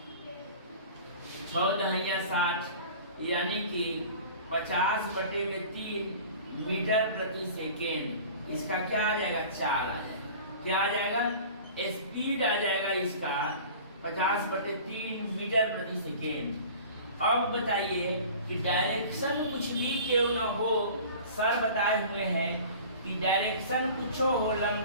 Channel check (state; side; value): inverted; both; correlation -0.42